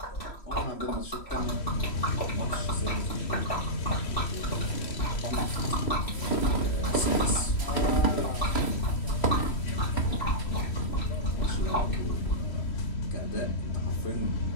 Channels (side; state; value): right; late; 3.1 ms